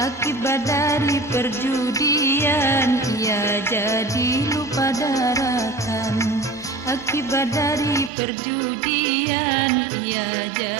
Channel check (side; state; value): left; drops out; at 8.1 s